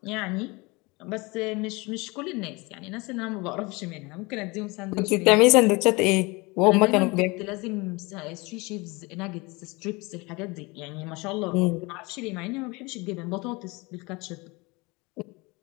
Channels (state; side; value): quieter; right; 25.5 dB